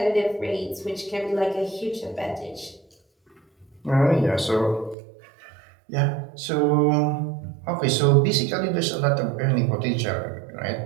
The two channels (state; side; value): drops out; left; at 5.0 s